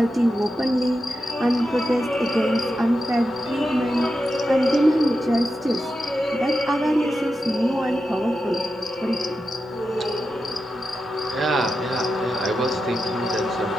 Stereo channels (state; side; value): normal; both; correlation 0.89